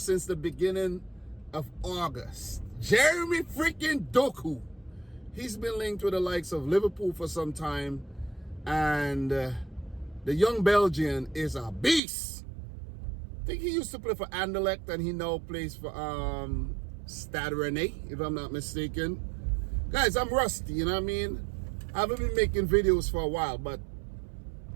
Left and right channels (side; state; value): left; drops out; at 12.0 s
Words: the beginning of August. Jeremy freaking Doku. He's been linked with the likes of Liverpool for some time, and the young Belgian is a beast. I think he used to play for Anderlecht, and he now plays for Stade Rennais, if I'm not mistaken. Guys, I'm rusty, you know what I mean? I haven't been making videos for a while, but